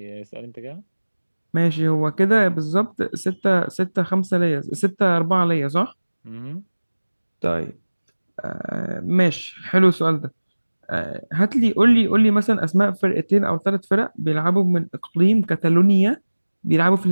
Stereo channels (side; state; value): both; inverted; correlation -1.00